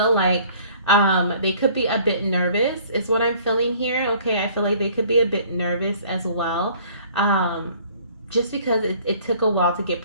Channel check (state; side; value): inverted; both; correlation -0.54